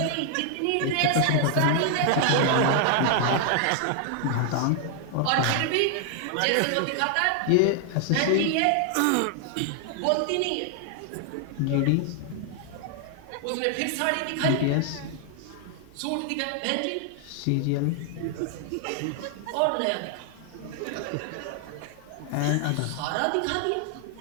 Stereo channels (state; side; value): different; both; correlation 0.00